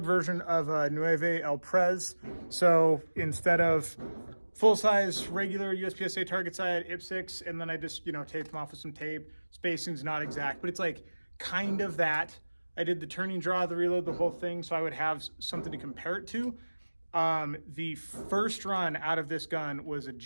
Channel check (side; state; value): both; inverted; correlation -1.00